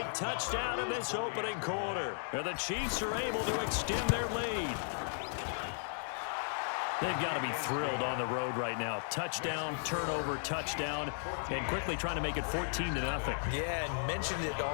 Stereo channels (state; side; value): silent; right; digital silence